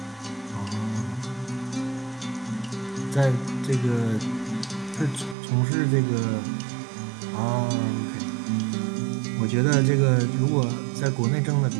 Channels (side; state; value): left; drops out; at 5.4 s